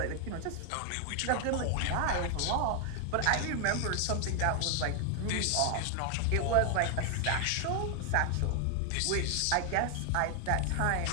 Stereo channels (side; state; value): both; different; correlation 0.00